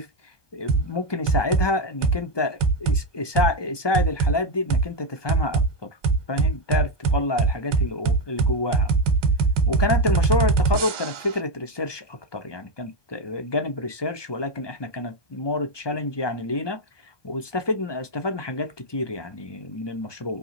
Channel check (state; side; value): late; right; 1.2 ms